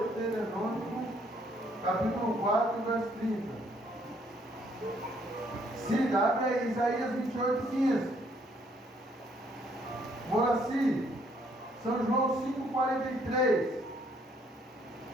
capítulo 4, verso 30. Siga, abre aí, Isaías 28, 15. Moraci, São João 5,43.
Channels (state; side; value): normal; both; correlation 0.67